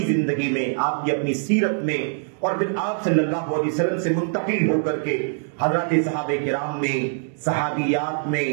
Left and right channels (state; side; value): silent; left; digital silence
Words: زندگی میں، آپ کی اپنی سیرت میں، اور پھر آپ صلی اللہ علیہ وسلم سے منتقل ہو کر کے حضرات صحابہ کرام میں، صحابیات میں،